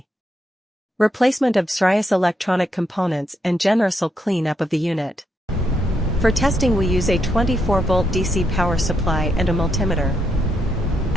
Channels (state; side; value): normal; both; correlation 0.79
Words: Replacement of various electronic components and general clean-up of the unit. For testing, we use a 24-volt DC power supply and a multimeter.